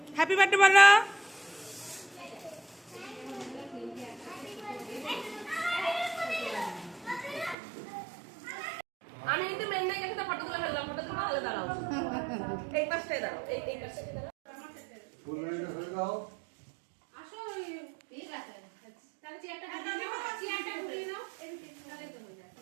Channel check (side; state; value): left; drops out; at 7.6 s